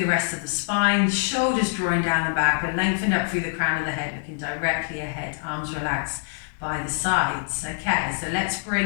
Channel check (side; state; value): right; silent; 57 dB below the other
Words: rest of the spine, shoulders drawing down the back, but lengthened up through the crown of the head, looking directly ahead, arms relaxed by the sides. Okay, so let's